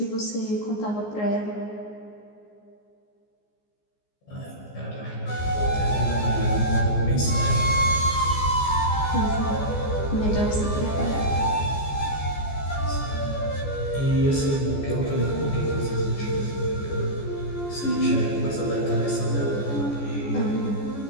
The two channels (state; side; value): late; right; 14 ms